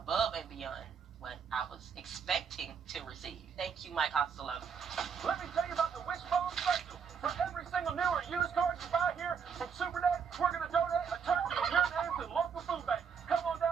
and beyond what I was expecting to receive. Thank you, Mike Costello. Let me tell you about the Wishbone Special. For every single new or used car you buy here from Super Dave, we're going to donate a turkey in your name to the local food bank. Come on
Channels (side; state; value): left; quieter; 6.6 dB